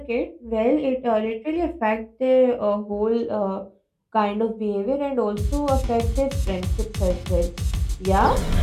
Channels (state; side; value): identical; both; correlation 1.00